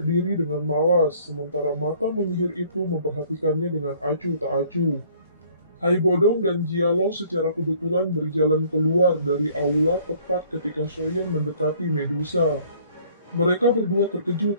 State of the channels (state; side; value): inverted; both; correlation -0.58